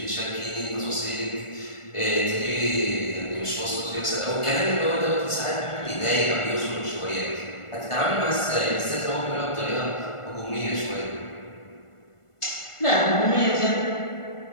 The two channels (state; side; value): late; right; 1.4 ms